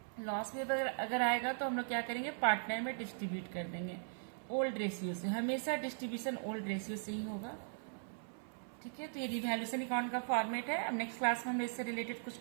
लॉस में अगर आएगा तो हम लोग क्या करेंगे, पार्टनर में डिस्ट्रीब्यूट कर देंगे ओल्ड रेशियो से। हमेशा डिस्ट्रीब्यूशन ओल्ड रेशियो से ही होगा, ठीक है। तो ये रिवैल्यूएशन अकाउंट का फॉर्मेट है। अब नेक्स्ट क्लास में हम इससे रिलेटेड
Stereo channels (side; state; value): left; silent; 52 dB below the other